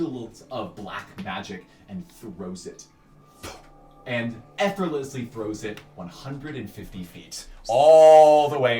of black magic and throws it. And effortlessly throws it 150 feet. All the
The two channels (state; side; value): identical; both; correlation 1.00